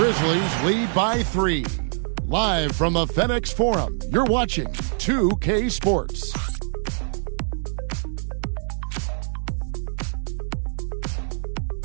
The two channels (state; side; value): silent; left; digital silence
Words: lead by 3. Live from the FedEx Forum, you're watching 2K Sports.